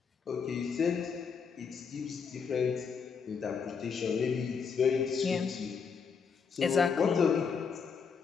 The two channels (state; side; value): quieter; right; 6.0 dB